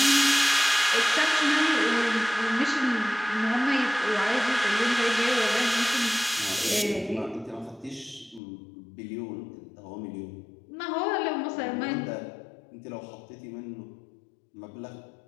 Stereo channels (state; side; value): drops out; right; at 8.4 s